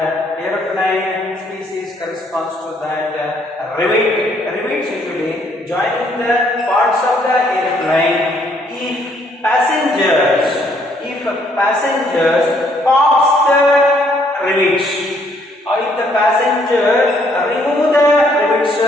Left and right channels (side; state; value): both; normal; correlation 0.67